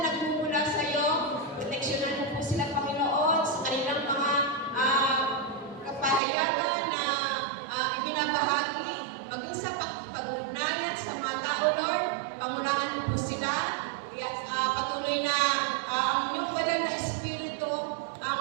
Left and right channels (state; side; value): drops out; left; at 6.2 s